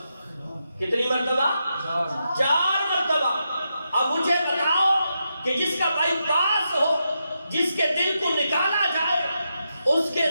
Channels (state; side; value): inverted; both; correlation -0.85